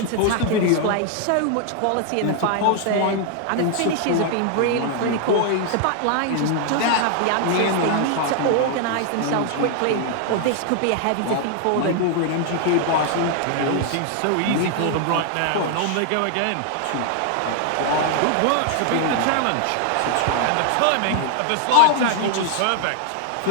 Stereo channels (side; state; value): both; different; correlation 0.00